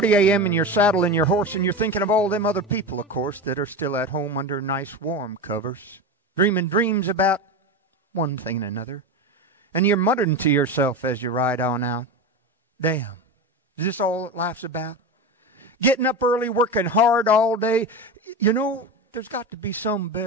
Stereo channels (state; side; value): normal; both; correlation 0.22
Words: a.m. and you're saddling your horse and you're thinking of all them other people, of course, that are still at home under nice warm covers, dreaming dreams about one thing and another. And you're muttering to yourself as you ride on out, damn, is this all that life's about? Getting up early, working hard all day. You know, there's got to be some